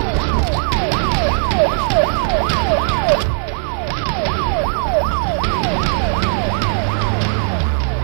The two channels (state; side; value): silent; left; digital silence